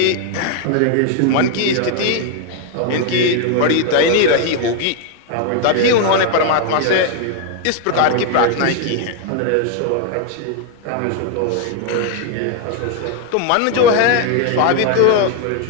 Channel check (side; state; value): both; different; correlation 0.01